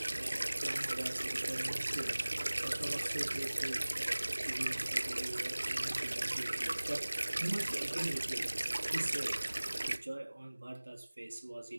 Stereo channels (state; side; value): inverted; both; correlation -1.00